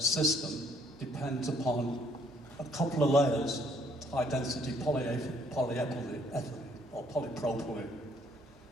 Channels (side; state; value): both; normal; correlation 0.64